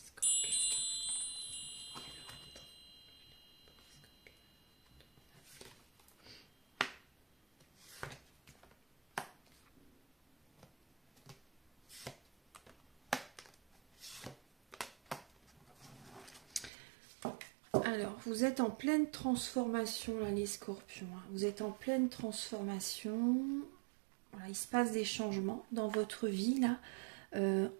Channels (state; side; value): drops out; left; at 16.7 s